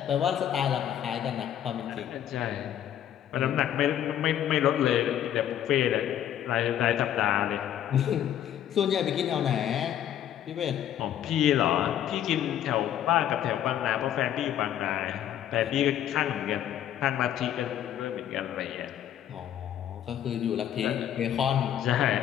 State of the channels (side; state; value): right; quieter; 10.7 dB